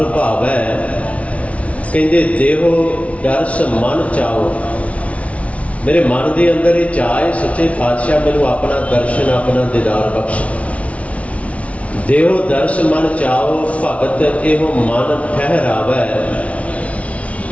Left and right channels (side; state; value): right; late; 0.065 ms